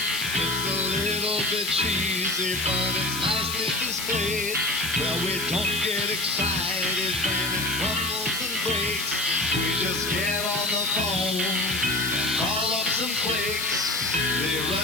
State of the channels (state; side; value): noise; left; hiss, 6 dB below the sound